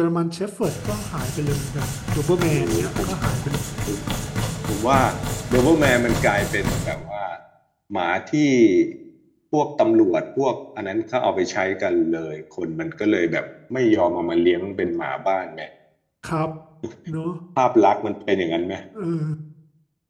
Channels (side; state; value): both; identical; correlation 1.00